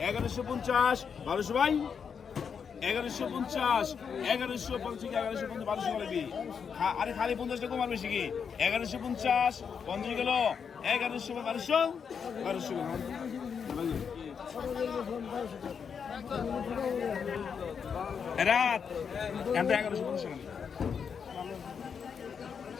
1150 1200 ভাই 1150 1200 গেল আরে খালি 50 টাকা কমার বেশি কি 1150 50 গেল 1200 গেল রাত এত 1150 টাকা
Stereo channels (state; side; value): quieter; right; 6.7 dB